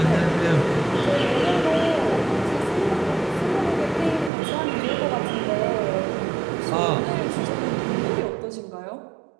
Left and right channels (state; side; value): drops out; left; at 4.3 s